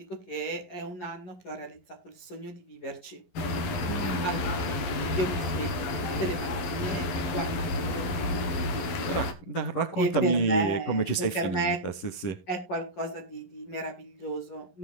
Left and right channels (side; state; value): right; late; 11 ms